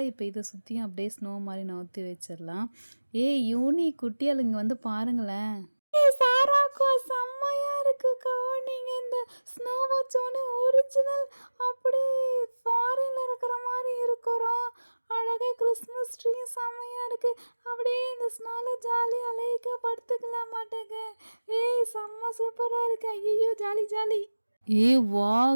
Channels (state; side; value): inverted; both; correlation -1.00